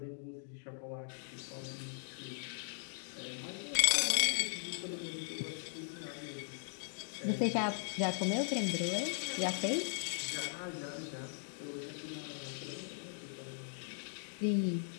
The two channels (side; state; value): right; silent; digital silence